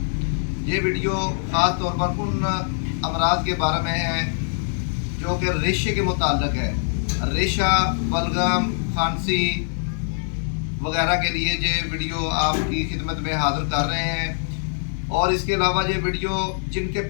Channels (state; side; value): silent; right; digital silence